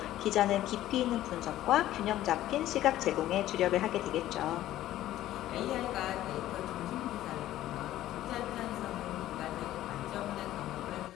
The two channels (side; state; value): right; quieter; 13.9 dB